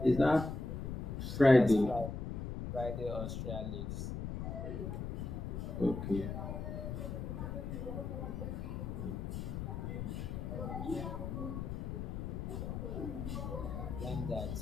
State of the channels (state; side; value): noise; left; rumble, 4 dB below the sound